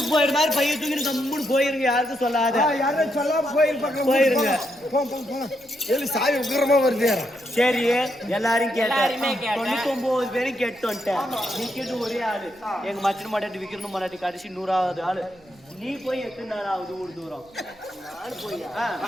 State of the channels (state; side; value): noise; right; hum, 29 dB below the sound